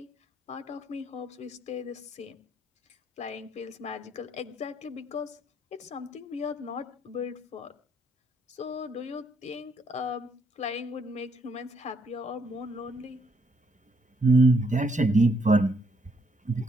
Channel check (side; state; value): both; normal; correlation 0.71